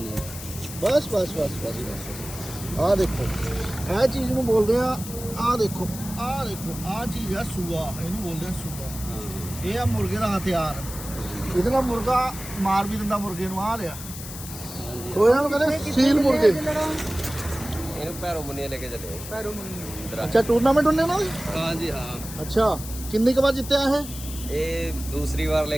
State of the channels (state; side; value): noise; left; hiss, 11 dB below the sound